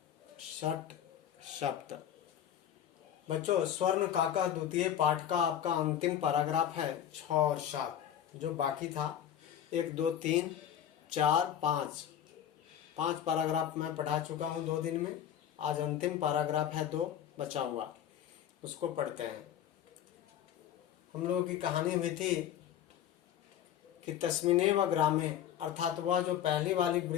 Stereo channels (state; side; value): quieter; right; 10.1 dB